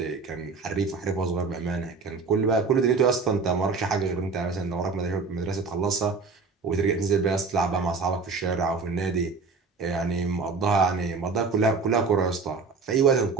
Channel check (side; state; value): left; quieter; 4.5 dB